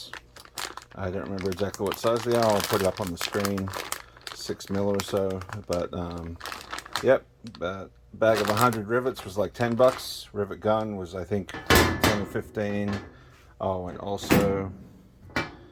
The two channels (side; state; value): both; identical; correlation 1.00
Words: I don't remember exactly what size they are. I'll put it up on the screen, 6 mil or so. But yep, a bag of 100 rivets was like 10 bucks. Rivet gun was, I think, 10 or 15. Oh, and also